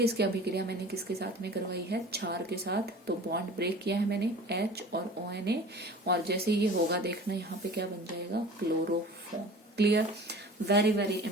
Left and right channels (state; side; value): normal; both; correlation 0.41